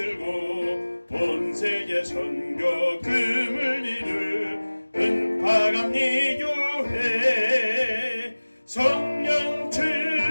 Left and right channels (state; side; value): inverted; both; correlation -1.00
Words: 온 세계 선교 금을 이룰 은파감리 교회 성령